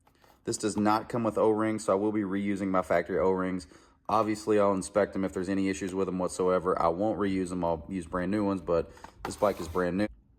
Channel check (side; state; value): both; identical; correlation 1.00